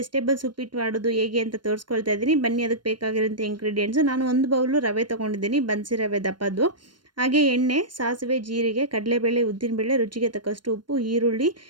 ಉಪ್ಪಿಟ್ಟು ಮಾಡೋದು ಹೇಗೆ ಅಂತ ತೋರಿಸ್ಕೊಳ್ತಾ ಇದ್ದೀನಿ. ಬನ್ನಿ, ಅದಕ್ಕೆ ಬೇಕಾಗಿರೋಂಥ ಇಂಗ್ರೀಡಿಯೆಂಟ್ಸು. ನಾನು ಒಂದು ಬೌಲು ರವೆ ತೊಗೊಂಡಿದ್ದೀನಿ, ಬನ್ಸಿ ರವೆ ದಪ್ಪದ್ದು. ಹಾಗೆ ಎಣ್ಣೆ, ಸಾಸಿವೆ, ಜೀರಿಗೆ, ಕಡಲೆಬೇಳೆ, ಉದ್ದಿನಬೇಳೆ, ರುಚಿಗೆ ತಕ್ಕಷ್ಟು ಉಪ್ಪು, ಈರುಳ್ಳಿ,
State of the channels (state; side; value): late; left; 0.72 ms